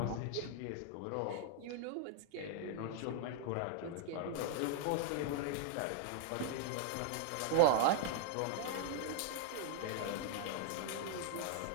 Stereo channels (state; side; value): different; both; correlation 0.00